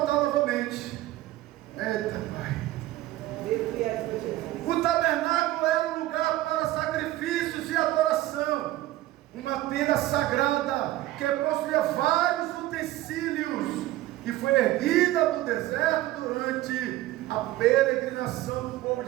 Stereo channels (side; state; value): left; quieter; 15.9 dB